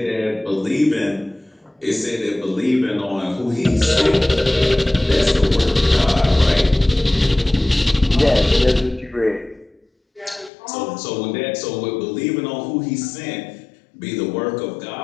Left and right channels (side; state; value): right; drops out; at 10.5 s